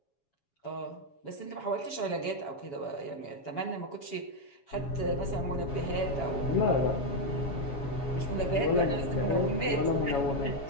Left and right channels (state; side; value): late; right; 7.2 ms